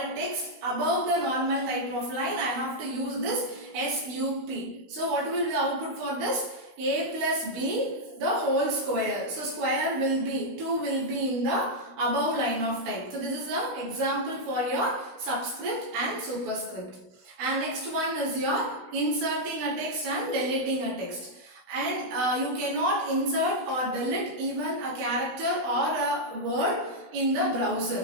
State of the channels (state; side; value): late; left; 16 ms